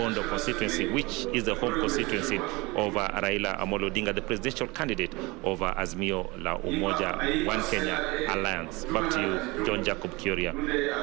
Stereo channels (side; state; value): left; quieter; 24.2 dB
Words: constituency, which is the home constituency of Raila Amolo Odinga, the presidential candidate of Azimio la Umoja One Kenya Alliance. Back to you, John Jacob Kuria.